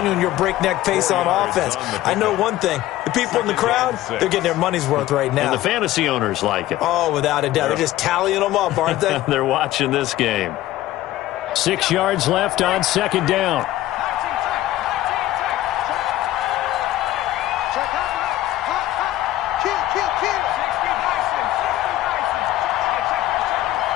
your breakneck pace on offense. I know one thing. The people in the crowd, they're getting their money's worth right now. And the fantasy owners like it. Oh, without a doubt. They're just tallying them up, aren't they? They're watching this game. 6 yards left on second down.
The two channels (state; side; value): quieter; right; 15.0 dB